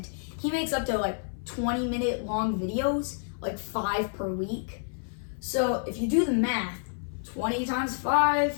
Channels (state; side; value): silent; right; 59 dB below the other